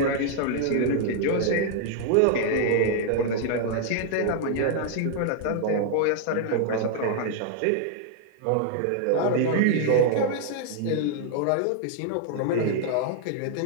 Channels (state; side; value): different; both; correlation 0.00